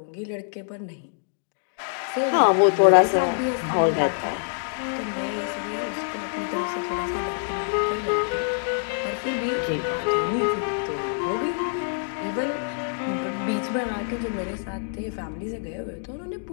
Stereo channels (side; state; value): right; silent; digital silence